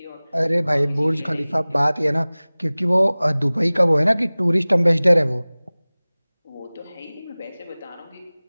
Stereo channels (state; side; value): inverted; both; correlation -1.00